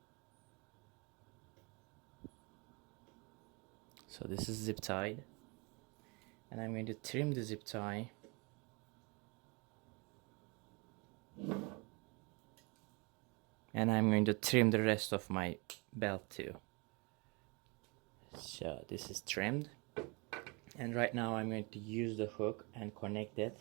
So this is zip tied, and I'm going to trim the zip tie. And I'm going to trim the rest of my belt too. So this is trimmed, and right now I'm going to use the hook and connect it.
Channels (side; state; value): left; quieter; 29.6 dB